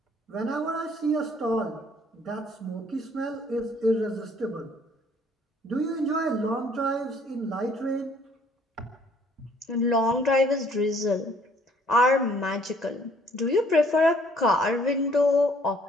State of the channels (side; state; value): both; normal; correlation 0.60